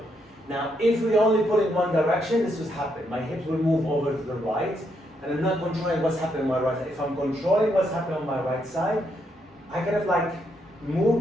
Now, if we only pull in one direction, this would happen. My hips will move over to the right, and I'm not controlling what's happening on my right side. If I'm controlling what's happening on my right side, I kind of like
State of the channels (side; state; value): both; normal; correlation 0.77